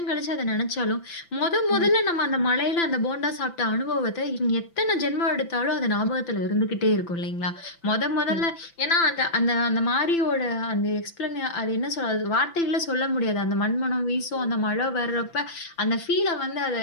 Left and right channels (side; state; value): right; late; 5.9 ms